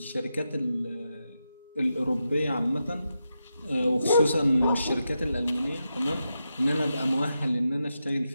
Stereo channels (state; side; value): inverted; both; correlation -0.87